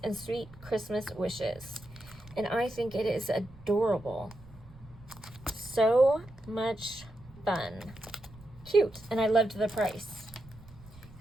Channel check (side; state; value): right; noise; rumble, 21 dB below the sound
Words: and sweet Christmas wishes. And I think it is adorable. So much fun. Cute. And I loved the price,